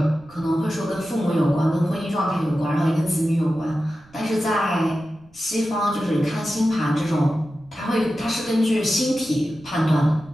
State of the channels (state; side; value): noise; right; rumble, 28 dB below the sound